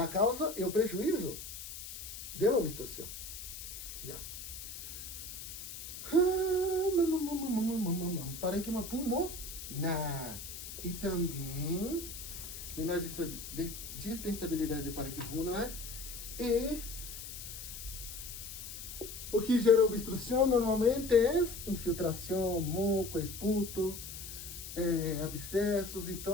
causa e o prejuízo da obstrução. Yeah. Parênquima pulmonar. E também menor distensibilidade de parênquima pulmonar. E o que gera obstrução normalmente é infiltração, moco, esputo, abscessos.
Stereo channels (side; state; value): left; noise; hiss, 10 dB below the sound